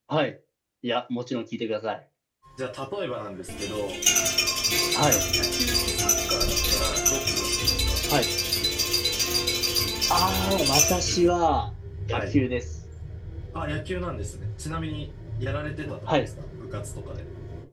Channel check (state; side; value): identical; both; correlation 1.00